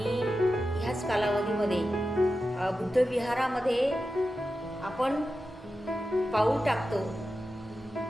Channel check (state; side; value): normal; both; correlation 0.91